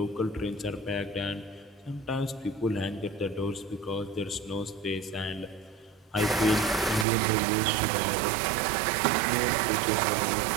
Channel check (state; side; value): drops out; left; at 7.1 s